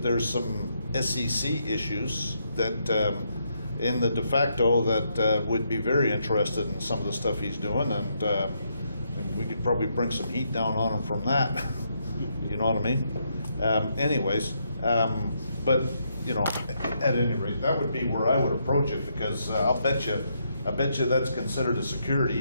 there's some SEC issues that in the de facto that would be very interested in some of the stuff he's doing, and we could probably bring some heat down on him from that. You know what I mean? But you know, at any rate, that would be where I would approach it, because I bet you that's considered a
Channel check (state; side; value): inverted; both; correlation -0.77